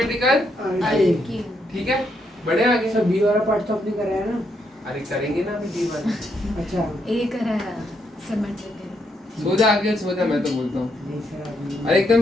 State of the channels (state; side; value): normal; both; correlation 0.77